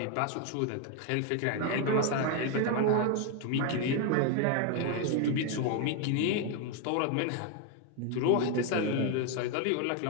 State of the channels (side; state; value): both; different; correlation 0.01